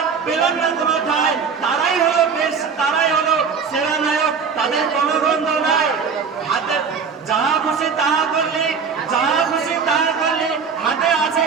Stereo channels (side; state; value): left; quieter; 5.9 dB